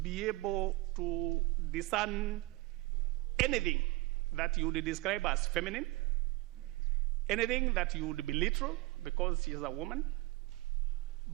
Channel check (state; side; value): quieter; left; 21.3 dB